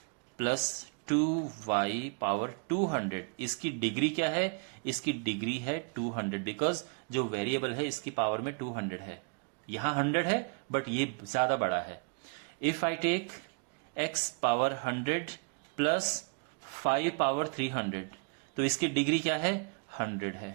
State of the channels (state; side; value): quieter; left; 34.9 dB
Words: plus 2y power 200, इसकी डिग्री क्या है? इसकी डिग्री है 200, बिकॉज जो वेरिएबल है इसकी पावर में 200 है. यहां 100 है बट ये ज्यादा बड़ा है. If I take x power 100 plus 5 power 300, तो इसकी डिग्री क्या है? 100 है.